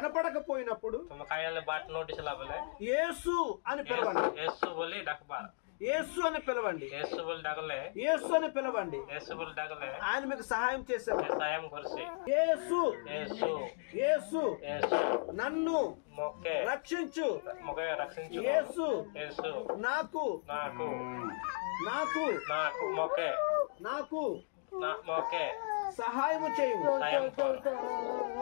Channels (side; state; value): right; silent; digital silence